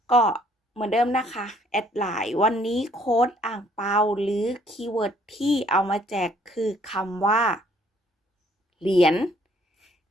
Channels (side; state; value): both; normal; correlation 0.62